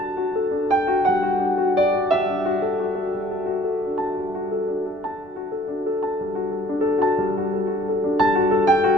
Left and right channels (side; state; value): both; normal; correlation 0.56